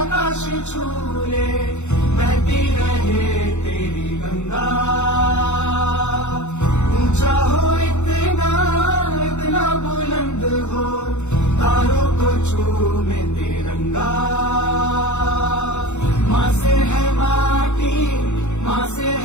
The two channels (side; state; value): right; late; 0.83 ms